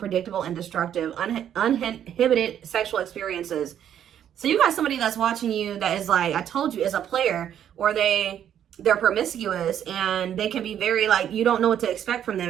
and destructive. Uninhibited sexual experiences. So you got somebody that's watching you that is like, I told you, is a player, or they're promiscuous, and they can be very, like, you don't know what to expect from them,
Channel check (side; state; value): left; quieter; 9.9 dB